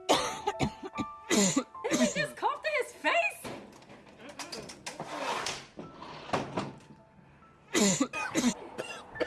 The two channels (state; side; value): identical; both; correlation 1.00